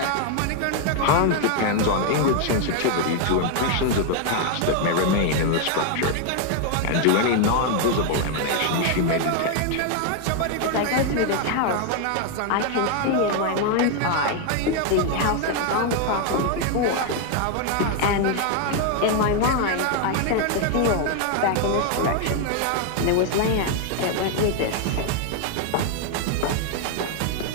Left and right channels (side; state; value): both; different; correlation 0.01